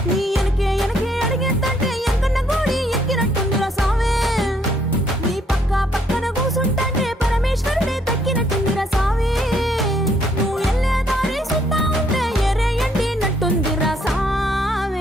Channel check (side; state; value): both; normal; correlation 0.69